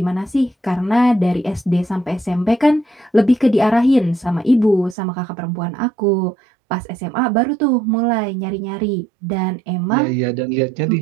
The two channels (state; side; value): drops out; left; at 5.0 s